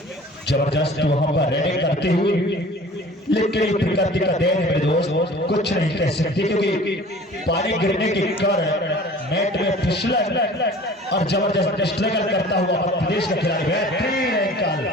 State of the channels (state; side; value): normal; both; correlation 0.45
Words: जबरदस्त वहां पर रेडिंग करते हुए लेकिन प्रकृति का देन है दोस्त कुछ नहीं कह सकते क्योंकि पानी गिरने के कारण नेट में फिसलन और जबरदस्त स्ट्रगल करता हुआ प्रदेश का खिलाड़ी बेहतरीन एंकल